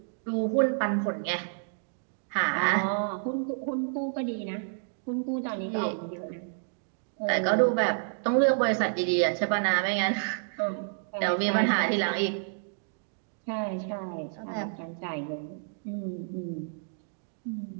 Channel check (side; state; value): left; silent; digital silence